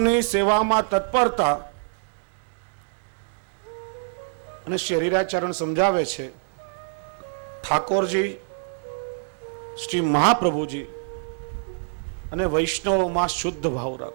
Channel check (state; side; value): silent; left; 61 dB below the other